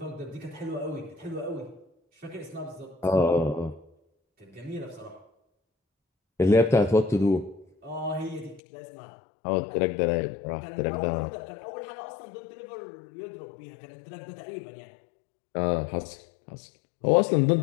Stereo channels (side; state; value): right; drops out; at 8.6 s